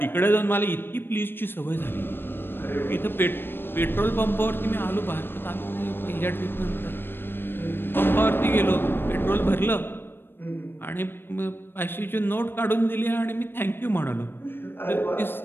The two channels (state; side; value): late; right; 0.10 ms